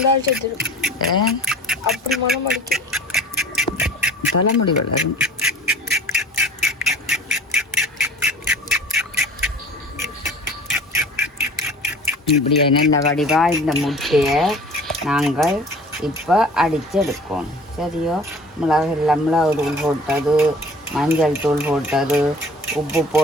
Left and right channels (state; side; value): normal; both; correlation 0.46